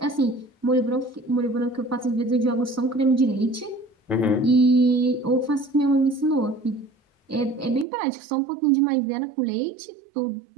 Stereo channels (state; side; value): drops out; left; at 7.9 s